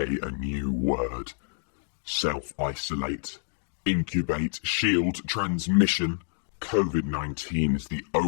a new word. Self-isolate, incubate, shield, transmission. COVID-19 is the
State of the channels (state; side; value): silent; right; 59 dB below the other